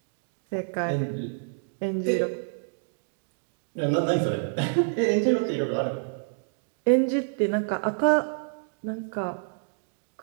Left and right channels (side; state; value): left; silent; digital silence